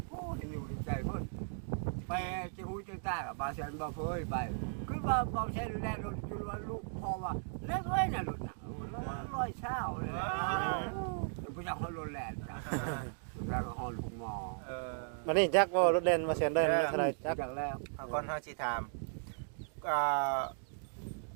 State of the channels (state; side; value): silent; left; digital silence